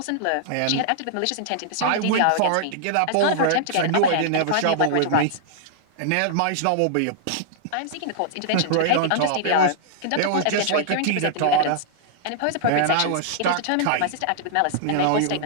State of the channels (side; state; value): both; different; correlation -0.01